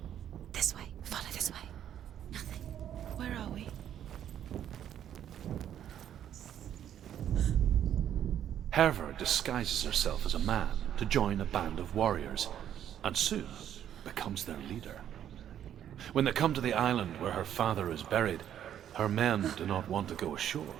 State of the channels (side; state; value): left; quieter; 10.2 dB